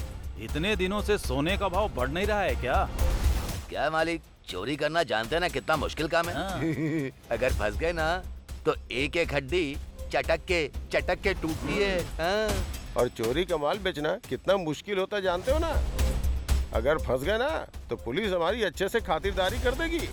इतने दिनों से सोने का भाव बढ़ नहीं रहा है क्या? क्या मालिक, चोरी करना जानते हैं ना कितना मुश्किल काम है। अगर फंस गए ना तो एक एक हड्डी चटक के टूटती है। और चोरी का माल बेचना कितना मुश्किल होता है जानते हो ना। अगर फंस गए ना तो पुलिस हमारी अच्छे से खातिरदारी कर देगी।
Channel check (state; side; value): identical; both; correlation 1.00